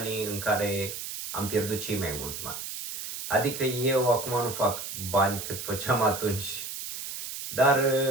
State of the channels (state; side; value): noise; right; hiss, 7 dB below the sound